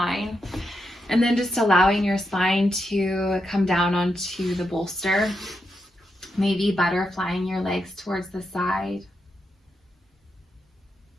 And then just allowing your spine to come down onto the bolster, maybe butterflying your legs towards the side,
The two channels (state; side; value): normal; both; correlation 0.84